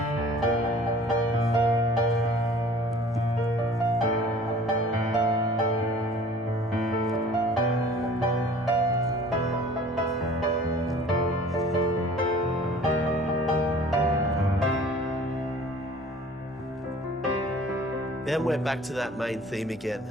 And we're back to that main theme again.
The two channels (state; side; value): normal; both; correlation 0.48